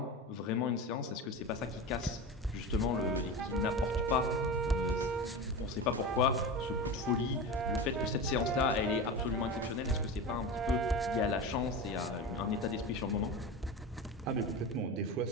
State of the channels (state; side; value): normal; both; correlation 0.26